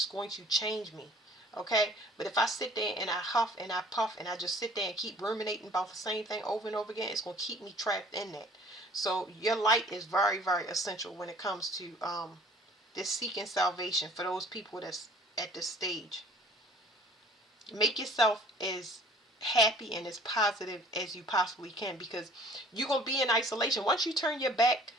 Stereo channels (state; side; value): normal; both; correlation 0.52